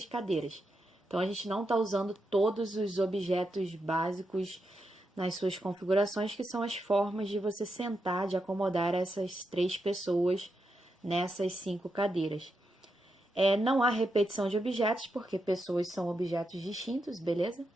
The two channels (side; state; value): both; normal; correlation 0.85